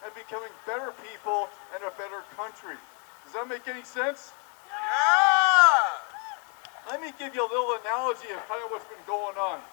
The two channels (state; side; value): quieter; right; 38.4 dB